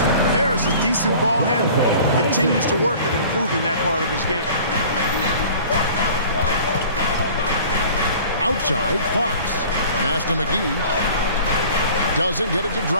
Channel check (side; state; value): both; inverted; correlation -0.46